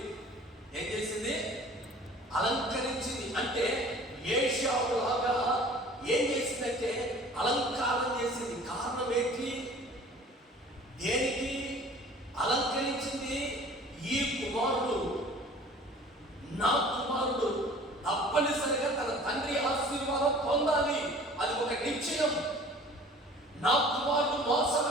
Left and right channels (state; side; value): normal; both; correlation 0.47